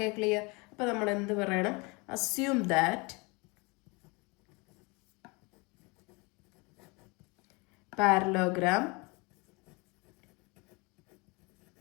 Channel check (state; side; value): quieter; right; 28.0 dB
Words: clear? അപ്പോൾ നമ്മൾ എന്ത് പറയണം? Assume that parallelogram